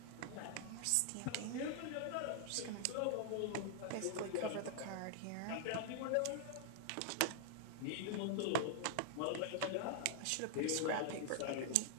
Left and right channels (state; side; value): different; both; correlation 0.00